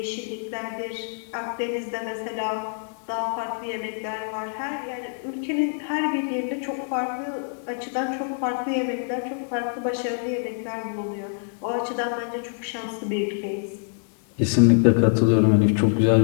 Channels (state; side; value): silent; right; 61 dB below the other